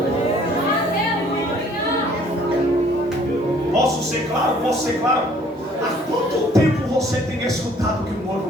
ser claro. Há quanto tempo você tem escutado que o noivo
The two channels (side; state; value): both; normal; correlation 0.58